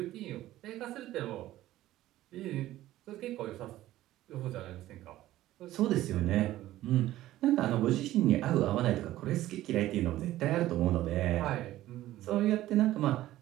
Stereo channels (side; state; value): left; quieter; 14.9 dB